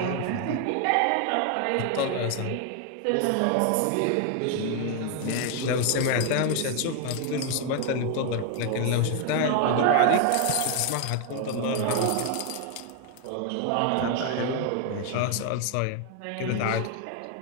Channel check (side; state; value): both; different; correlation 0.01